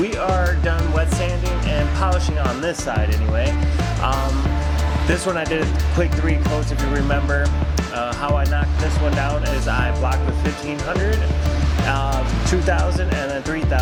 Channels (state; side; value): identical; both; correlation 1.00